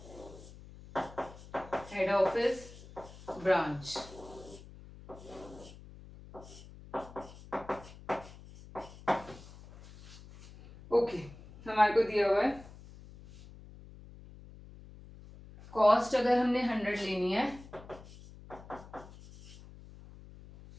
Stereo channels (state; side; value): noise; left; hum, 18 dB below the sound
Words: Head office branch. ओके, हमारे को दिया हुआ है कॉस्ट. अगर हमने 100 लेनी है,